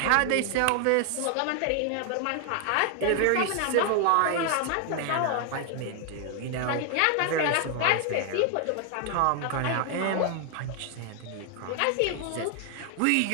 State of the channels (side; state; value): both; different; correlation 0.00